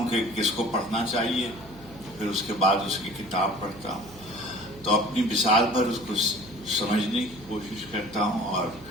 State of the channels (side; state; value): right; noise; hum, 20 dB below the sound